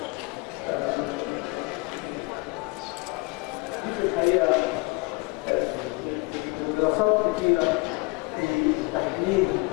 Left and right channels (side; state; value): right; quieter; 25.9 dB